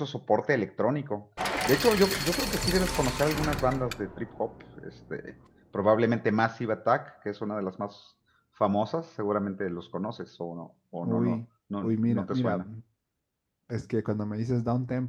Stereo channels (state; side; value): identical; both; correlation 1.00